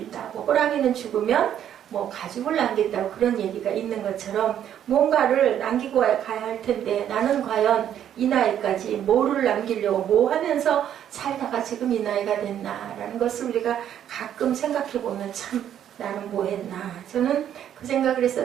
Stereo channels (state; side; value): quieter; left; 10.1 dB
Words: 호랑이는 죽으면 뭐 가죽을 남긴다고, 그런 얘기가 있는 것처럼 뭔가를 남기고 가야 할 텐데, 나는 과연 이 나이까지 뭐를 남기려고 뭐 하면서 살다가 지금 이 나이가 됐나라는 것을 우리가 가끔 생각해 보면 참 나는 뭐 했나. 저는 그 생각을